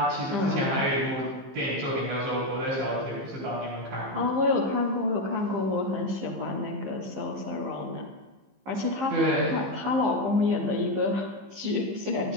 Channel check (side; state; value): left; late; 15 ms